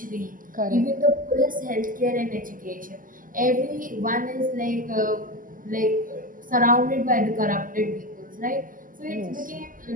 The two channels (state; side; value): late; left; 0.40 ms